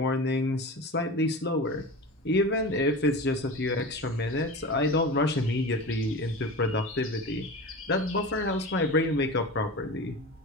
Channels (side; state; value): both; normal; correlation 0.30